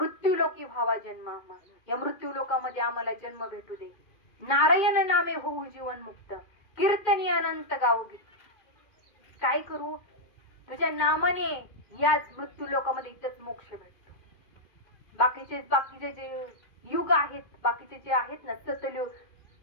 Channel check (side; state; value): right; late; 2.5 ms